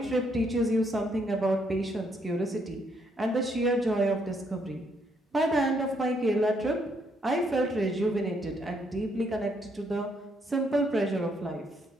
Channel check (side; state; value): both; normal; correlation 0.73